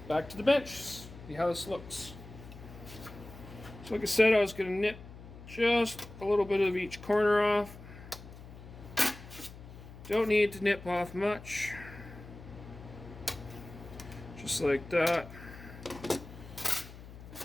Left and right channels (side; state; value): left; noise; hum, 16 dB below the sound